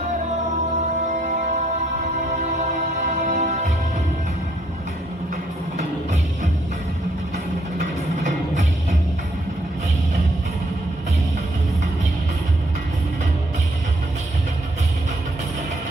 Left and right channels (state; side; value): normal; both; correlation 0.69